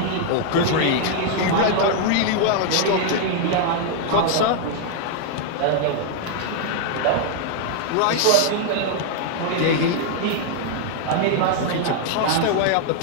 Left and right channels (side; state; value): both; different; correlation 0.00